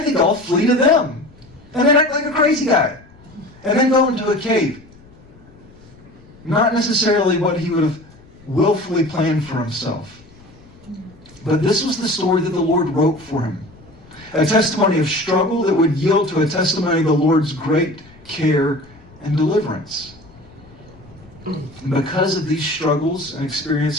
think I'll flee to them. And then act like a crazy guy. And then go into a cave. Not necessarily what he would have willfully planned for himself. But this was the story that the Lord wrote for him. A testimony of struggle that would yield to a testimony of the Lord's great care and deliverance. And because of these struggles and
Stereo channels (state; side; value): noise; left; rumble, 25 dB below the sound